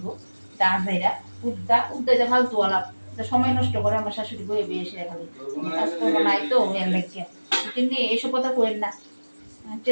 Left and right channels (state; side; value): inverted; both; correlation -1.00